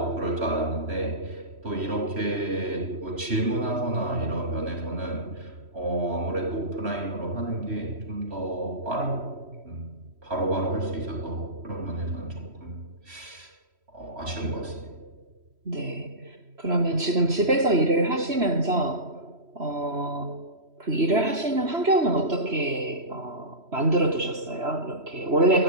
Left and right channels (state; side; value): late; left; 3.1 ms